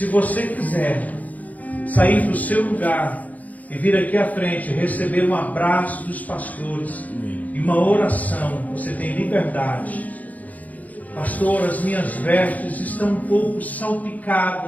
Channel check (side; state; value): right; late; 0.077 ms